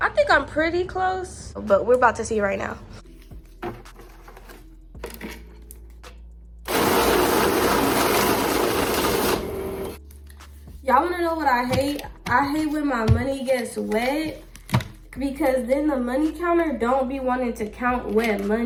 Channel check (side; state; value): both; identical; correlation 1.00